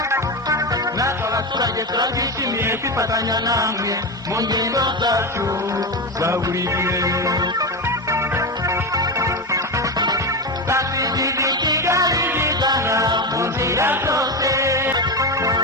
natwe abaturage turabyishimiye kwifatanya namwe mu ngendo zacu za buri gihe twasigije Kigali bizana mu nzira zose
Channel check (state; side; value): normal; both; correlation 0.16